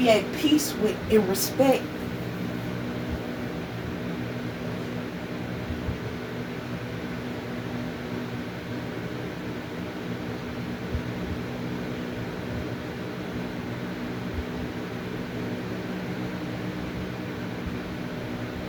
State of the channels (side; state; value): both; identical; correlation 1.00